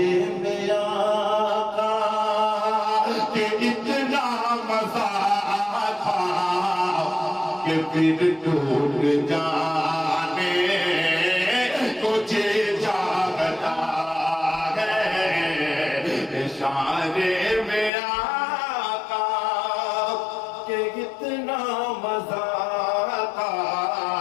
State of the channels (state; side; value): drops out; right; at 17.9 s